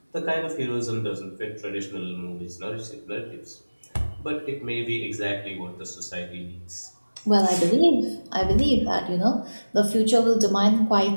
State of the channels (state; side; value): inverted; both; correlation -1.00